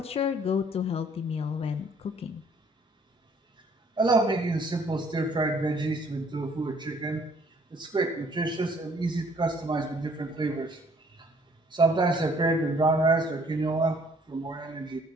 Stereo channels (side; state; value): both; normal; correlation 0.60